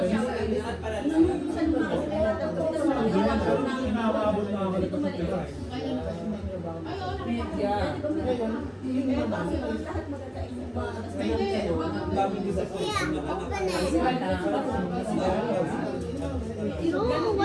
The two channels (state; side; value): identical; both; correlation 1.00